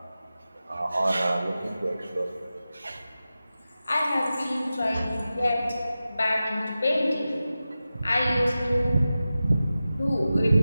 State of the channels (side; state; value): both; inverted; correlation -0.94